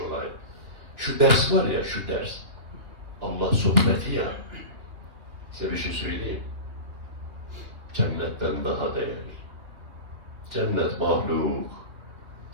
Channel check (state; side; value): late; left; 2.6 ms